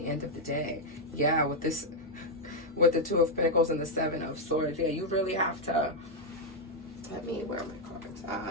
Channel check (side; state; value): both; normal; correlation -0.01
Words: end of the day. Yeah, with the 2 of Pentacles and the 7 of Swords, yeah, you really have to, where are my cards?